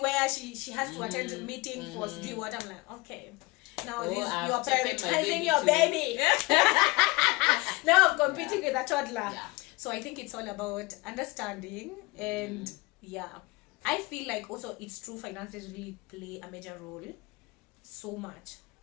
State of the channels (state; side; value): quieter; right; 23.3 dB